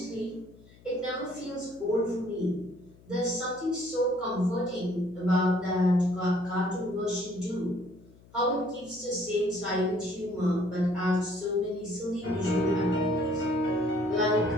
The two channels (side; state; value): left; noise; hum, 25 dB below the sound